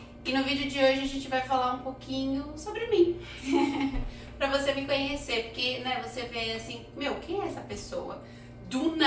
E no vídeo de hoje a gente vai falar um pouquinho sobre mim. Pra você me conhecer, porque né, você vê assim, quem é essa pessoa? Do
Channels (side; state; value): both; identical; correlation 1.00